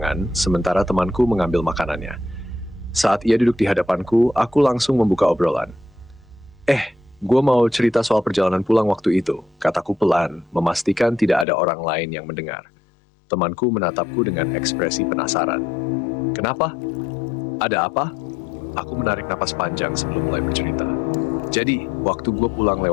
sementara temanku mengambil makanannya. Saat ia duduk di hadapanku, aku langsung membuka obrolan. Gue mau cerita soal perjalanan pulang waktu itu, kataku pelan, memastikan tidak ada orang lain yang mendengar. Temanku menatapku dengan ekspresi penasaran. Kenapa? Ada apa? Aku menarik napas panjang sebelum mulai bercerita. Jadi, waktu gue pulang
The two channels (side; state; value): right; drops out; at 11.5 s